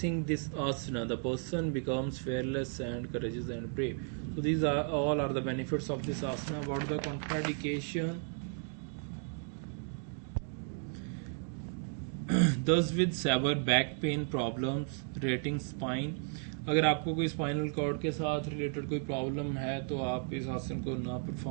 this asana, the person becomes fearless and courageous and brave. So these are all are the benefits of this asana. About the contraindication, those with severe back pain problems, rating spine. अगर आपको कोई spinal cord के साथ related कोई problem है तो आप इस आसन को ना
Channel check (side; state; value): left; silent; 55 dB below the other